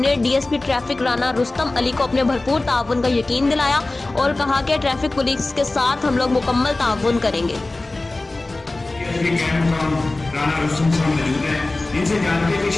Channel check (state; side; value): quieter; right; 3.0 dB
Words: डीएसपी ट्रैफिक राना रुस्तम अली को अपने भरपूर ताउन का यकीन दिलाया और कहा कि ट्रैफिक पुलिस के साथ हम लोग मुकम्मल ताउन करेंगे। राना रुस्तम साहब मौजूद हैं, इनसे जानते हैं कि